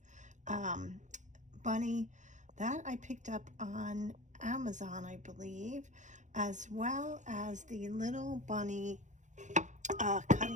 bunny that I picked up on Amazon, I believe, as well as the little bunny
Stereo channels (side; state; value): left; late; 0.35 ms